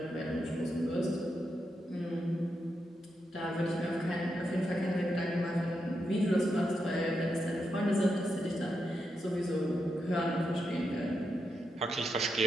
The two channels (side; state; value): both; normal; correlation 0.85